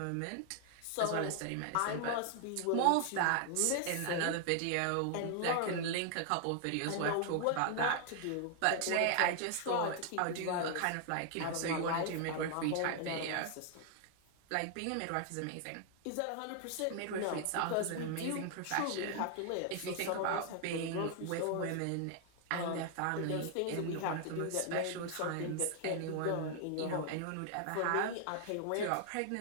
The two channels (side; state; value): both; different; correlation 0.00